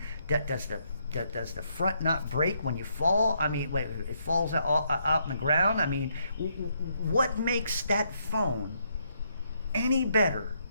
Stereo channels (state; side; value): inverted; both; correlation -0.75